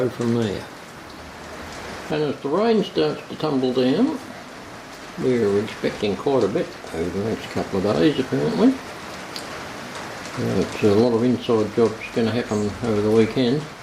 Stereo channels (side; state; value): both; identical; correlation 1.00